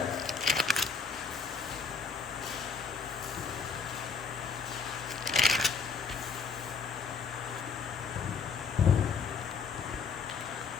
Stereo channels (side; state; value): right; quieter; 5.5 dB